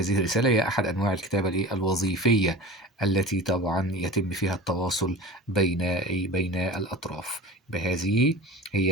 الرسالة هي أحد أنواع الكتابة الوظيفية التي طبعا يتم فيها التواصل بين الأطراف. بهذه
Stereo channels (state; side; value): normal; both; correlation 0.34